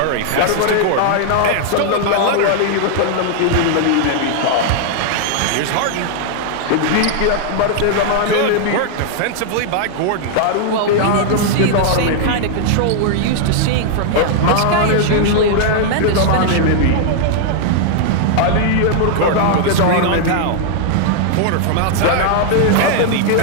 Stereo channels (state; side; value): different; both; correlation -0.01